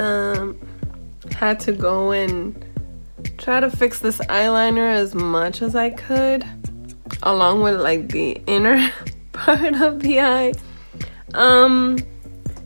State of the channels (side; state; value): both; inverted; correlation -1.00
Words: had to go and try to fix this eyeliner as much as I could, along with like the inner part of the eye.